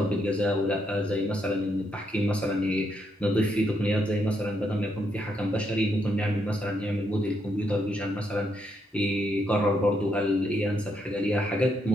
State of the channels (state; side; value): normal; both; correlation 0.77